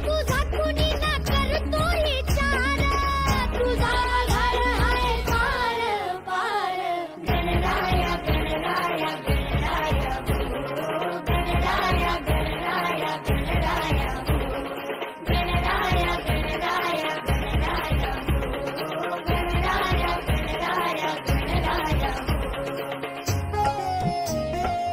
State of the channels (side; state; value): both; identical; correlation 1.00